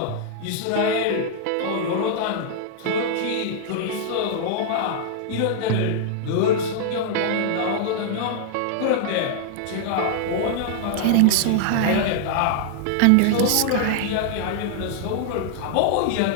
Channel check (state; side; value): different; both; correlation -0.01